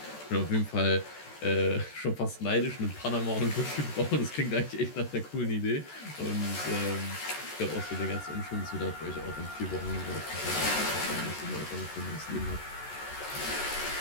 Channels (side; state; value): right; late; 14 ms